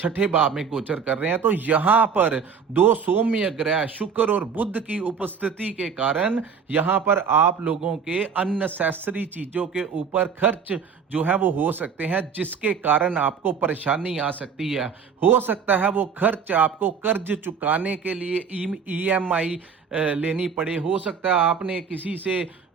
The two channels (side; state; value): left; quieter; 6.4 dB